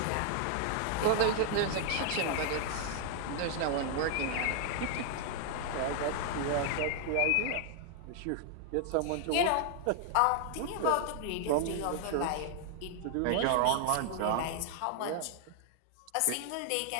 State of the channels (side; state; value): both; different; correlation 0.00